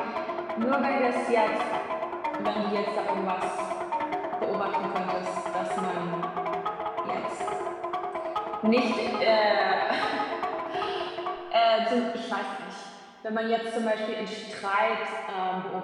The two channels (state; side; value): identical; both; correlation 1.00